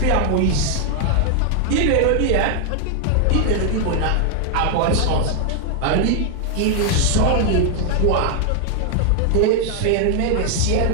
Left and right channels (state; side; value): different; both; correlation 0.00